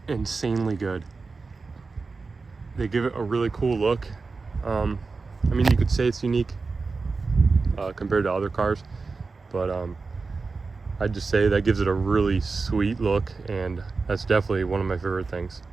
insanely good. They give it a really cool look. I mean, you could say it's unique compared to other cars, but I'd just say that gives it a really sweet look, and that's definitely one of my favorite things.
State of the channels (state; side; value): quieter; left; 4.2 dB